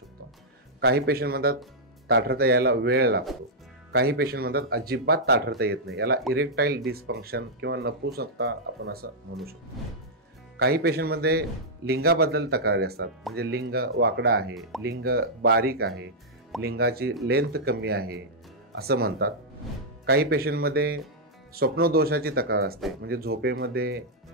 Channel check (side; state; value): both; normal; correlation -0.08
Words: काही पेशंट म्हणतात ताठरता यायला वेळ लागतो. काही पेशंट म्हणतात अजिबात ताठरता येत नाही. याला इरेक्टाईल डिसफंक्शन किंवा नपुंसकता आपण असं म्हणू शकतो. काही पेशंटमध्ये लिंगाबद्दल तक्रारी असतात, म्हणजे लिंग वाकडा आहे, लिंग बारीक आहे, लिंगाची लेंथ कमी आहे असं म्हणतात. काही पेशंटमध्ये स्वप्नदोषाची तक्रार असते, म्हणजे झोपेमध्ये